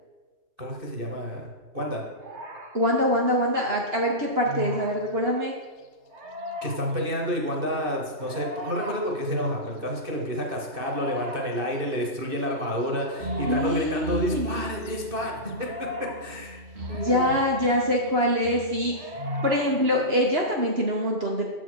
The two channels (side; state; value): left; late; 2.6 ms